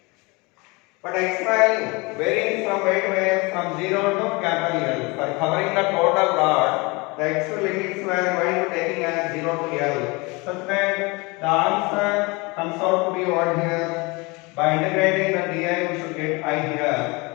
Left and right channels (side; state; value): right; quieter; 26.4 dB